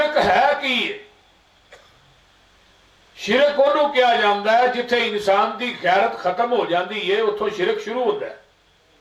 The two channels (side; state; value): both; identical; correlation 1.00